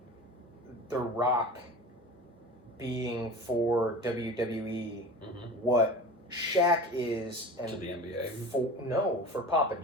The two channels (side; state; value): both; normal; correlation 0.35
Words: The Rock being for WWE what Shaq is and to the NBA. For Papa